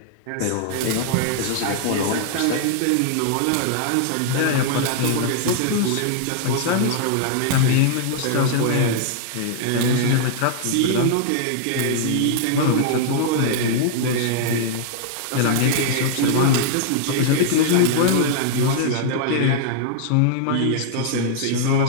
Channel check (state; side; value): different; both; correlation -0.01